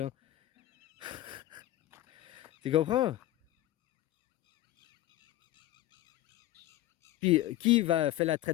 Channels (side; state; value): right; quieter; 15.0 dB